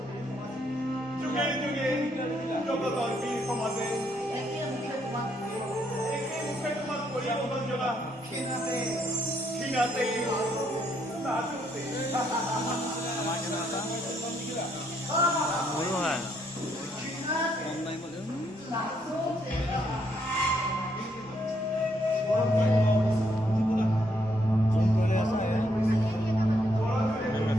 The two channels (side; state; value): both; normal; correlation 0.73